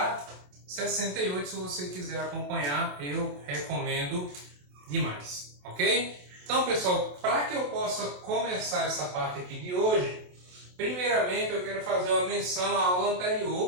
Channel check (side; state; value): left; late; 27 ms